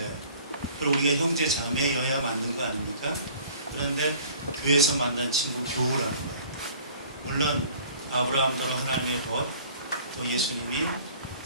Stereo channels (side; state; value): both; inverted; correlation -0.50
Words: 그리고 우리가 형제 자매여야 맞는 거 아닙니까? 그런데 교회에서 만난 친구 교우라는 거예요. 물론 아브라함대로 하나님의 벗, 또 예수님이